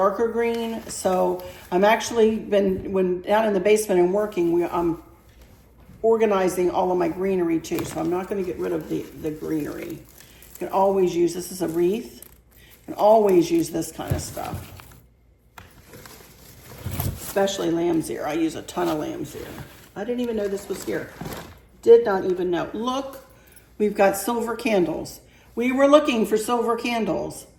green. So I'm actually when down in the basement and working, I'm organizing all of my greenery too. So I'm not going to get rid of the greenery. You can always use, this is a wreath. You can always use this kind of stuff. Especially lamb's ear. I use a ton of lamb's ear. I didn't even know this was here. Did not even know. Look, we've got silver candles. We were looking for silver candles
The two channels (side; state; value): both; identical; correlation 1.00